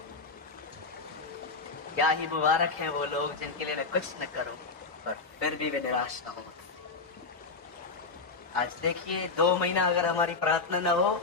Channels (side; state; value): right; quieter; 4.2 dB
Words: क्या ही मुबारक है वो लोग जिनके लिए मैं कुछ न करूं और फिर भी वे निराश न हो। आज देखिए 2 महीना अगर हमारी प्रार्थना न हो,